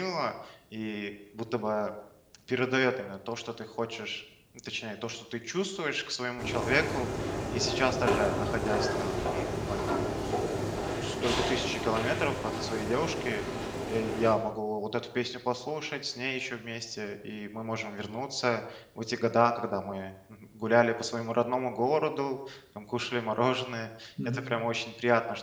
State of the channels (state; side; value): identical; both; correlation 1.00